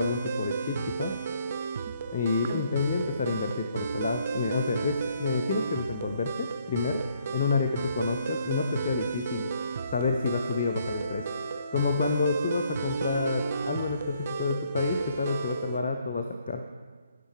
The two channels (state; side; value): inverted; both; correlation -0.68